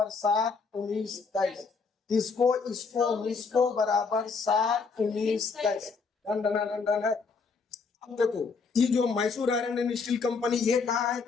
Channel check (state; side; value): quieter; right; 4.9 dB